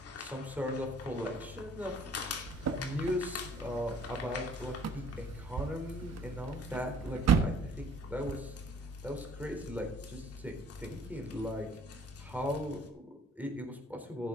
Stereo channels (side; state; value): both; normal; correlation 0.55